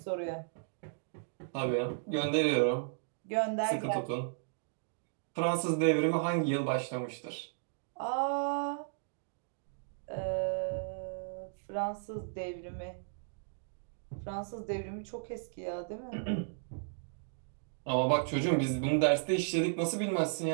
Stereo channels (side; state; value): left; silent; digital silence